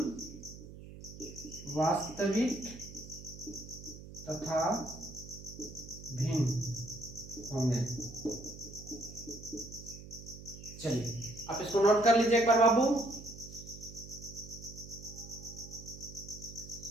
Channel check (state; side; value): noise; right; hum, 14 dB below the sound